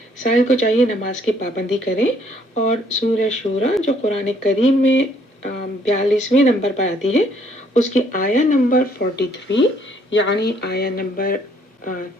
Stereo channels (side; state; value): both; normal; correlation 0.66